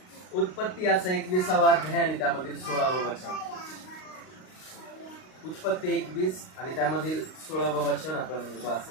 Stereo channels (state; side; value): late; right; 38 ms